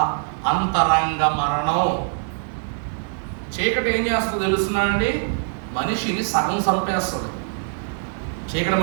అంతరంగ మరణం. చీకటి ఏం చేస్తుందో తెలుసునా అండి? మనిషిని సగం చంపేస్తుంది. చీకటి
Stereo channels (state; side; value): silent; left; digital silence